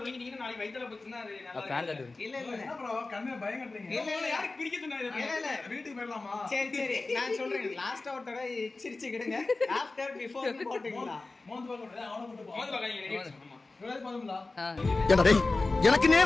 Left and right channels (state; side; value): quieter; right; 3.4 dB